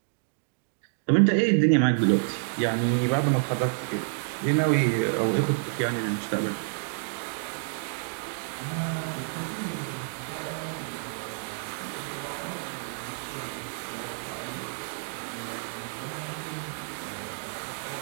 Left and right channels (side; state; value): left; silent; digital silence